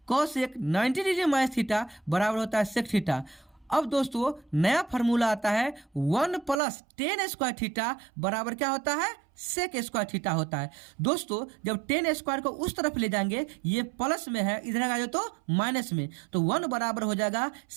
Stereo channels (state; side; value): drops out; left; at 6.6 s